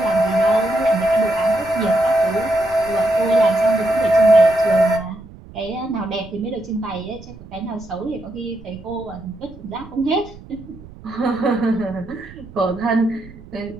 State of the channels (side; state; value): right; noise; rumble, 19 dB below the sound